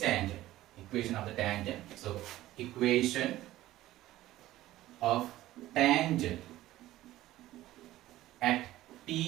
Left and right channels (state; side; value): quieter; left; 15.4 dB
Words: tangent. Equation of the tangent. So, equation of tangent at